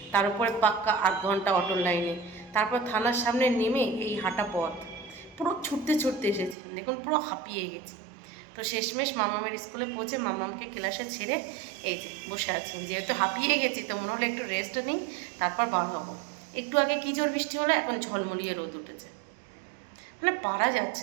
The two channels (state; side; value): drops out; left; at 6.6 s